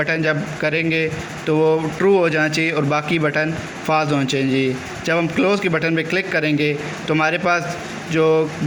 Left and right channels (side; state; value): both; identical; correlation 1.00